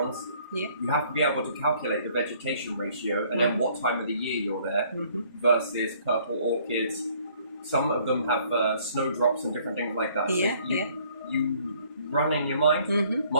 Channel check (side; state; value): both; inverted; correlation -0.60